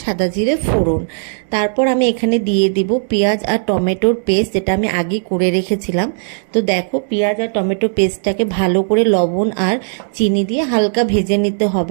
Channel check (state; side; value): silent; left; digital silence